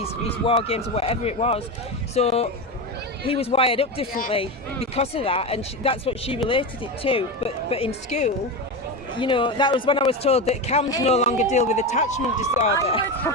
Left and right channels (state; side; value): normal; both; correlation 0.19